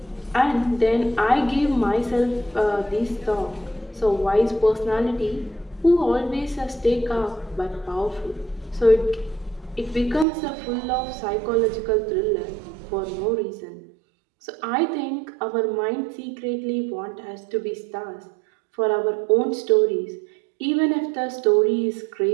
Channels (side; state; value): left; drops out; at 10.2 s